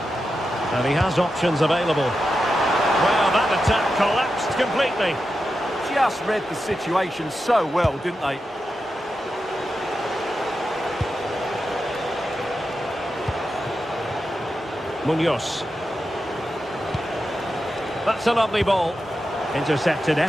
And he has options available. Well, that attack collapsed completely. Just read the situation so well, didn't they? Munoz. That's a lovely ball. Intercepted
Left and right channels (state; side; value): normal; both; correlation 0.89